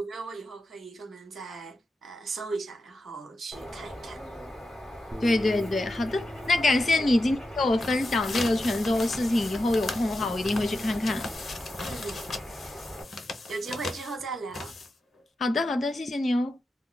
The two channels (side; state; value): both; normal; correlation 0.89